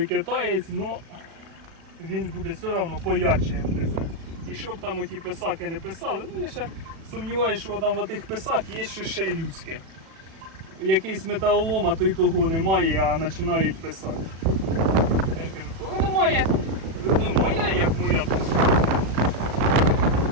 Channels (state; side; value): late; left; 37 ms